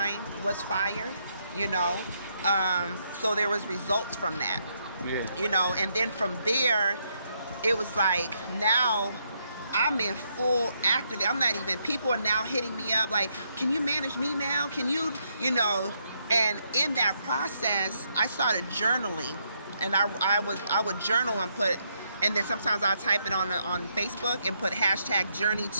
was fired, you know? So there was results from that. Yeah. You know, and then from there, it was like, now I'm in full active. I'm not even, people are now hitting me up like, can you manage me now? Can you, you know? And in that process, I started journaling, and I would journal and put, and then sometimes I'll type it on Facebook and put hashtag journey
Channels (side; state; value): both; inverted; correlation -0.76